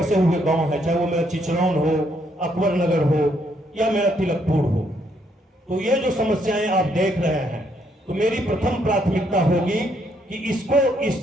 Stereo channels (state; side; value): normal; both; correlation 0.72